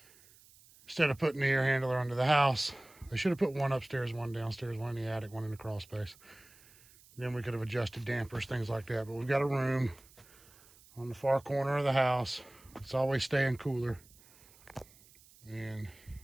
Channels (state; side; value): noise; right; hiss, 26 dB below the sound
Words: Instead of putting the air handler under the house, they should have put one upstairs, one downstairs, one in the attic, one in the crawl space. Then we could have adjusted dampers, things like that. But we've got a room on the far corner of the house. It's always staying cooler. And